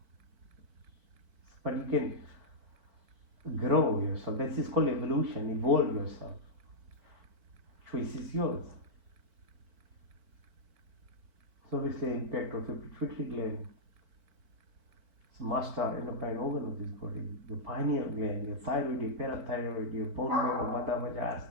But you can grow yourself. This is called evolution. Evolve yourself. Choice is yours. So obviously the impact of your pituitary gland. It's master endocrine organ of this body. Your pineal gland, your thyroid, your parathyroid, your bone marrow, vata, vaja,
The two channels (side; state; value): left; late; 4.5 ms